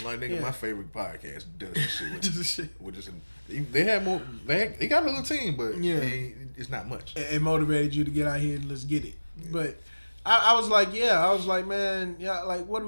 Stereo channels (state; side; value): inverted; both; correlation -1.00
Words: Like, nigga, my favorite podcast does this shit with just they have more. They got a little team, but it's not much. It motivated you to get out here and let's get it. Yeah. But I was like, man, like, what are